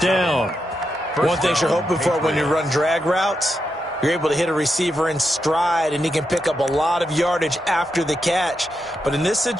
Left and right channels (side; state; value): both; normal; correlation 0.85